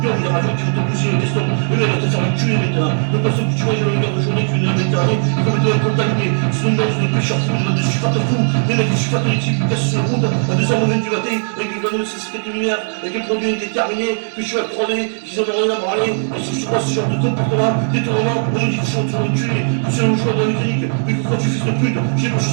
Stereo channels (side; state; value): left; silent; 66 dB below the other